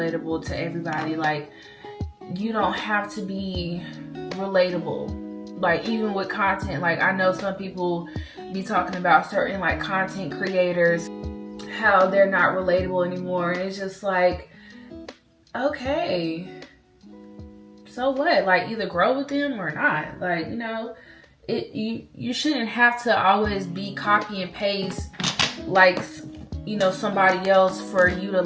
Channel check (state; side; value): identical; both; correlation 1.00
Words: to everybody. Like, you don't have to be relatable. Like, even with content, like, I know some people be talking about certain, like, content creators, how they're not relatable anymore. And it's just like, okay, so what? Like, either grow with them or not. Like, you know, you shouldn't have to always be copy and paste, like, you know, somebody else for you to